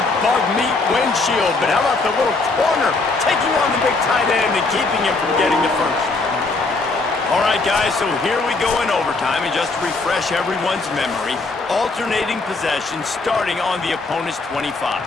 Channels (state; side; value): quieter; right; 3.6 dB